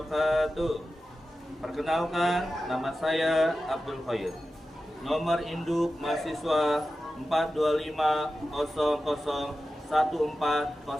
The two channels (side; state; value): both; normal; correlation 0.93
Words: Perkenalkan, nama saya Abdul Khair. Nomor induk mahasiswa